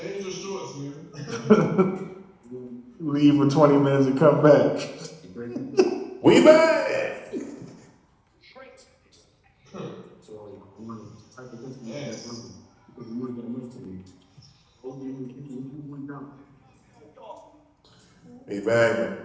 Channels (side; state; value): both; identical; correlation 1.00